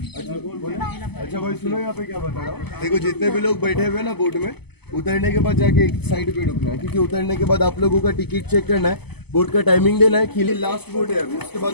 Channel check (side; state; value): right; late; 0.98 ms